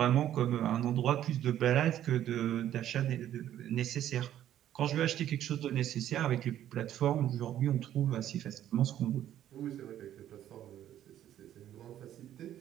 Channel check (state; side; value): quieter; left; 11.6 dB